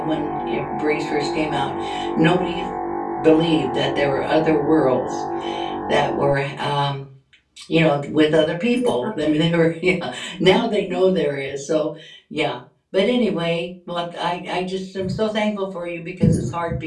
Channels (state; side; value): identical; both; correlation 1.00